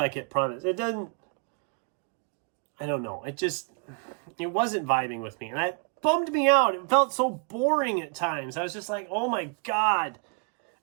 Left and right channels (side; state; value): left; quieter; 35.8 dB